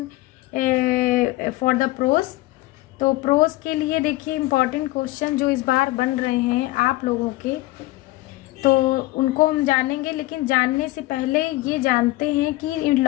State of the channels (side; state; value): right; quieter; 18.8 dB